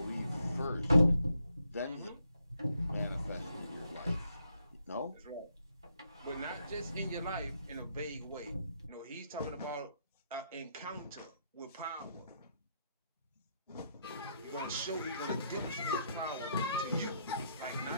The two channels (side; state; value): both; inverted; correlation -0.75